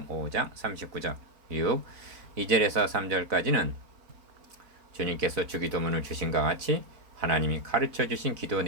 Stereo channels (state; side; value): late; left; 4.0 ms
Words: 5장 39절. 6. 2절에서 3절까지는 주님께서 주기도문을 주신과 같이 하나님이 가르쳐 주신 기도